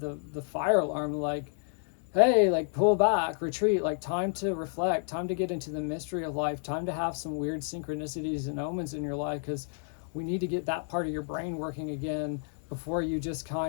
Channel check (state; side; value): silent; right; digital silence